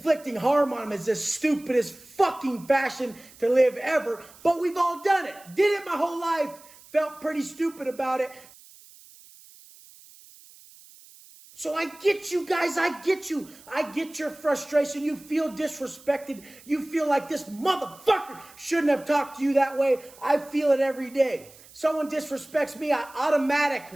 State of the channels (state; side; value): noise; right; hiss, 23 dB below the sound